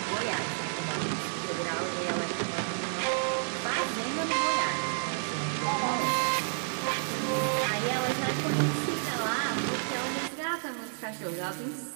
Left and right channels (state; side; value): silent; left; digital silence